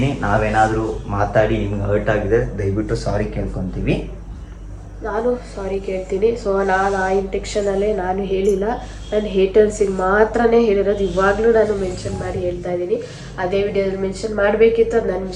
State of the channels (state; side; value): identical; both; correlation 1.00